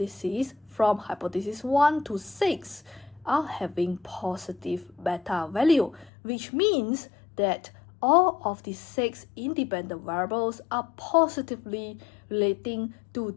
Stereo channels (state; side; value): drops out; right; at 6.1 s